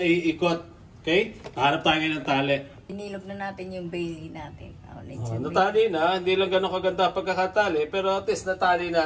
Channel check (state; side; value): identical; both; correlation 1.00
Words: iikot. Okay? Hanap tayo ngayon ng tali. Inilog na natin yung bailey natin. Natali na. Hindi lang ganun kaganda pagkakatali. Pero at least natali